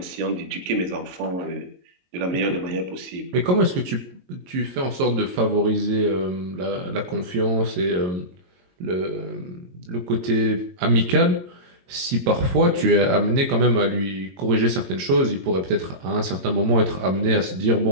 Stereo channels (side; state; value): left; late; 22 ms